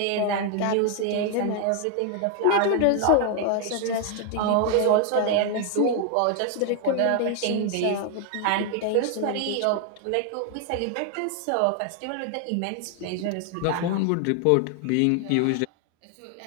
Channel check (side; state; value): both; different; correlation 0.00